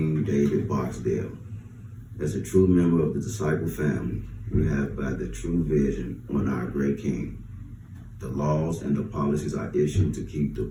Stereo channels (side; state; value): both; identical; correlation 1.00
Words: David Barksdale. As a true member of the disciple family, we have by the true vision on our great King. The laws and the policies are issued to keep the